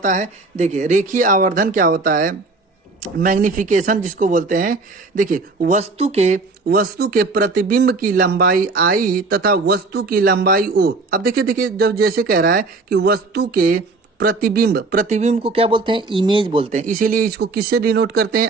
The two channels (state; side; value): quieter; left; 3.7 dB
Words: है, देखिए रेखीय आवर्धन क्या होता है, मैग्निफिकेशन जिसको बोलते हैं। देखिए वस्तु के प्रतिबिंब की लंबाई आई तथा वस्तु की लंबाई ओ। अब देखिए जब जैसे कह रहा है कि वस्तु के प्रतिबिंब को क्या बोलते हैं, इमेज बोलते हैं, इसीलिए इसको किससे डिनोट करते